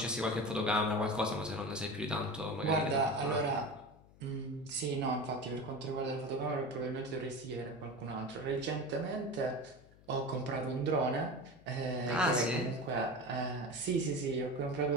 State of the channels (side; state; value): left; noise; hum, 24 dB below the sound